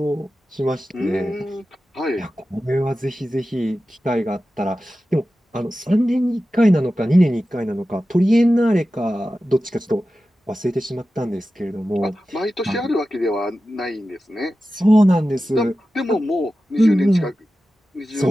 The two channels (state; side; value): normal; both; correlation 0.94